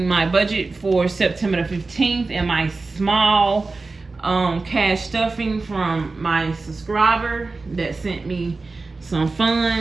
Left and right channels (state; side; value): quieter; left; 3.7 dB